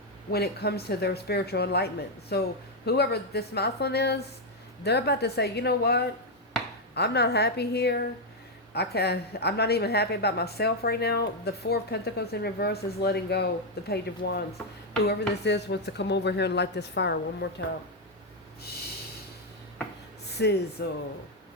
when it comes to their spiritual enlightenment. So whoever this masculine is, they're about to say, you know what? I'm not happy here. I'm not even happy about myself right now. The Four of Pentacles in reverse is letting go. The Page of Wands. Whoever this is wants to come over here and light this fire one more time. Sizzle.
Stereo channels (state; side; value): normal; both; correlation 0.01